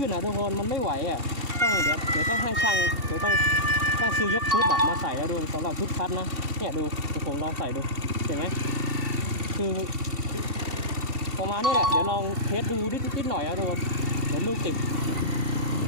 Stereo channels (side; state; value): left; late; 2.7 ms